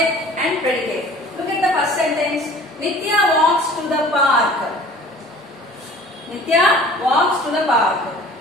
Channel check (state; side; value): normal; both; correlation 0.47